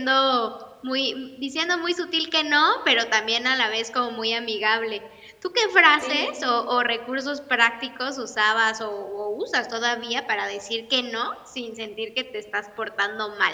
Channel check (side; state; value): both; identical; correlation 1.00